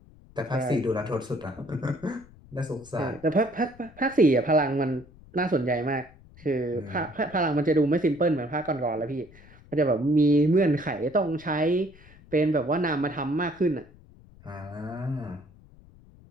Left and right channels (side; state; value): left; noise; rumble, 24 dB below the sound